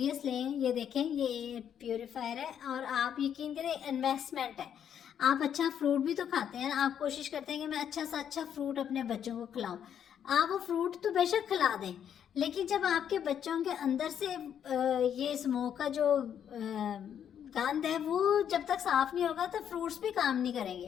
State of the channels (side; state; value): right; quieter; 9.0 dB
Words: लें। ये देखें, ये प्यूरीफायर है और आप यकीन करें इन्वेस्टमेंट है। आप अच्छा फ्रूट भी तो खाते हैं, आप कोशिश करते हैं कि मैं अच्छा सा अच्छा फ्रूट अपने बच्चों को खिलाऊं। आप वो फ्रूट तो बेशक खिला दें, लेकिन जब आपके बच्चों के अंदर से ये स्मोक का जो गंद है वो जब तक साफ नहीं होगा तो फ्रूट्स भी काम नहीं